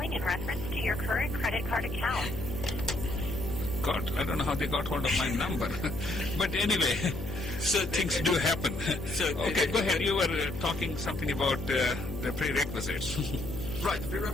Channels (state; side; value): noise; left; hum, 8 dB below the sound